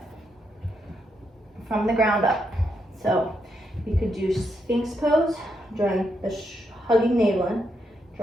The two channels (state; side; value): normal; both; correlation 0.80